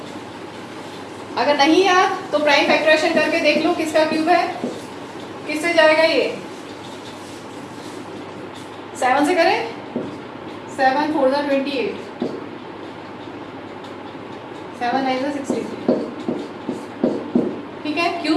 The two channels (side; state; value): both; identical; correlation 1.00